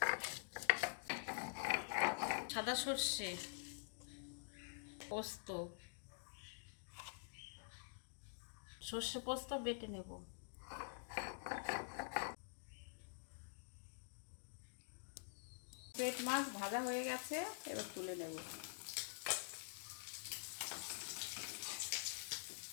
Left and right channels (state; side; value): silent; right; digital silence